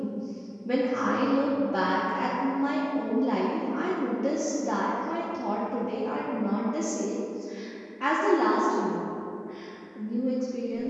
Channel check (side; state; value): both; identical; correlation 1.00